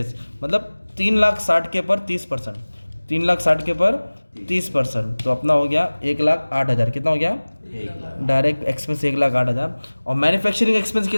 मतलब 3,60,000 के पर 30%। 3,60,000 के पर 30%। तो अपना हो गया 1,08,000। कितना हो गया? Direct expense 1,08,000। और मैन्युफैक्चरिंग एक्सपेंस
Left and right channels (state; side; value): inverted; both; correlation -1.00